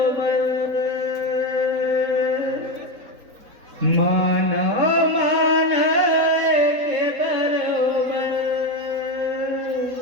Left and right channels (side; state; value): left; late; 4.1 ms